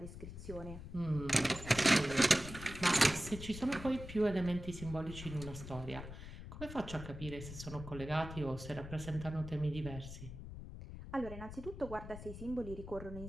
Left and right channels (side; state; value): left; noise; rumble, 11 dB below the sound